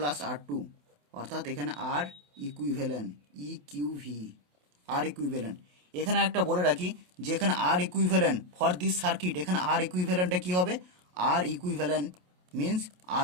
R2, অর্থাৎ এখানে R equivalent EQV R equivalent. এখানে একটা বলে রাখি যে এখানে R equivalent for this circuit, এখানে R ইকুইভ্যালেন্টটা কী হবে, R equivalent means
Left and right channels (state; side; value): late; left; 28 ms